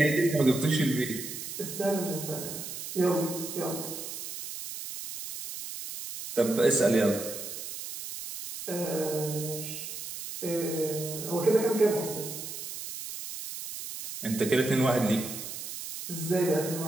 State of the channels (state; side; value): noise; right; hiss, 8 dB below the sound